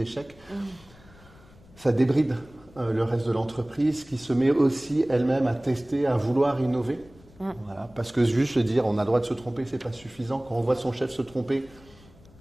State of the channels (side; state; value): left; noise; rumble, 25 dB below the sound